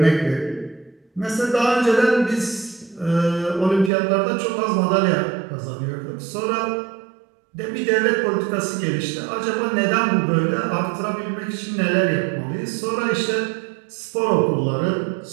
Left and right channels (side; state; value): left; drops out; at 3.9 s